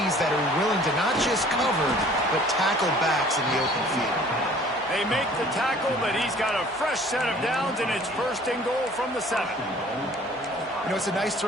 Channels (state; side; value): normal; both; correlation 0.52